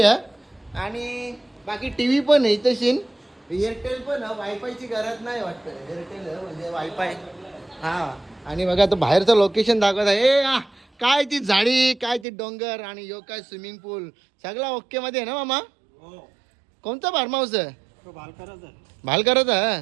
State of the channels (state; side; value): drops out; left; at 12.2 s